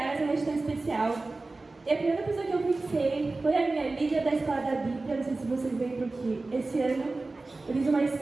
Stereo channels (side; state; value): left; quieter; 3.4 dB